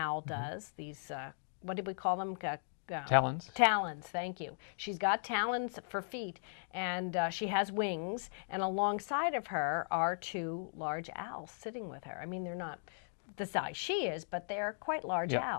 does. These, what did we call them? Talons. Talons, thank you. She's got talons for feet, and she has wings, and alongside of her are two large owls sitting with her. I mean, they're not the size she is, but they're quite large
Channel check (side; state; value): right; silent; digital silence